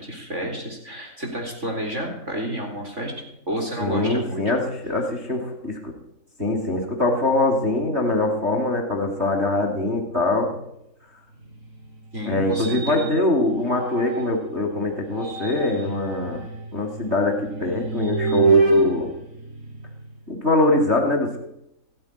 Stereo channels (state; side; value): late; left; 3.5 ms